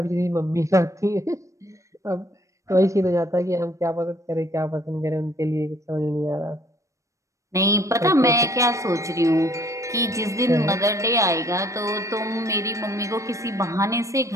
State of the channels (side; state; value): left; late; 0.15 ms